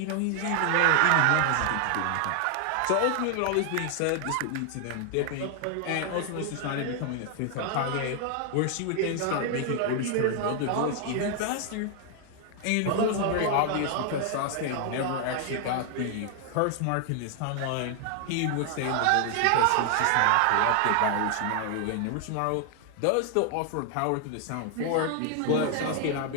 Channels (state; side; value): different; both; correlation 0.00